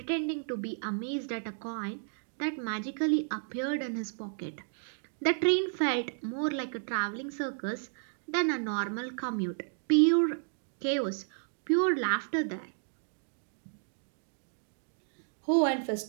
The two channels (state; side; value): silent; left; digital silence